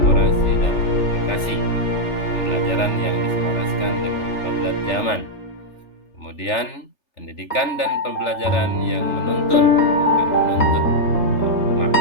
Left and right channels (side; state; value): right; late; 3.4 ms